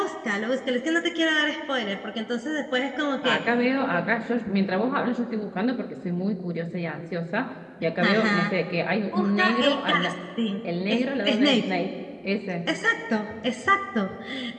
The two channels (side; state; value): both; identical; correlation 1.00